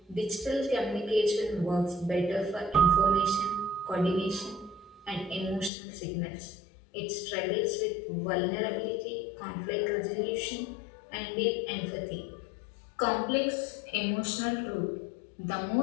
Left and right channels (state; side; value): drops out; right; at 5.7 s